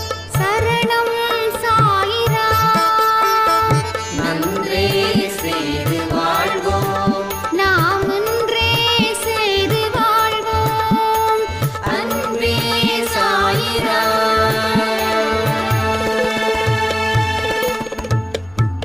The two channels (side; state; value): left; noise; rumble, 26 dB below the sound